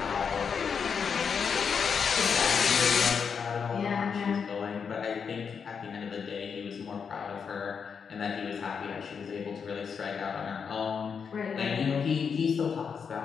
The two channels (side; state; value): right; quieter; 6.4 dB